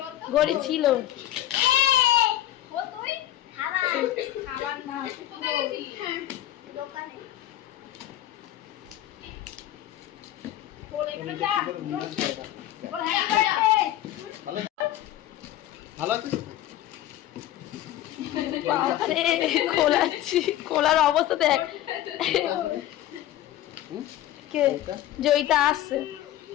গড়ি ছিল? ও তুই? খাবার না। কোথায় গেছিলি? বল এখানে যা। বল হ্যাপি বার্থডে। ভালো ভালো আছে তো? বাবারে, খোলাচ্ছি, খোলার অবস্থা দেখ। কে? জয়িতা আসছে,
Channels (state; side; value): quieter; right; 13.3 dB